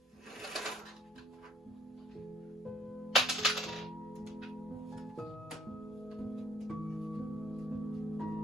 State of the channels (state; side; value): normal; both; correlation 0.61